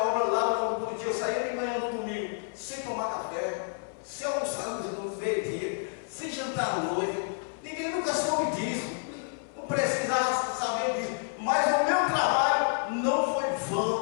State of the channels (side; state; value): right; silent; 58 dB below the other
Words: obra lá no dia, eu saía de manhã no domingo, sem tomar café, sem almoçar no meio-dia, sem jantar à noite. Ninguém nunca soube disso, não precisava saber disso, mas o meu trabalho não foi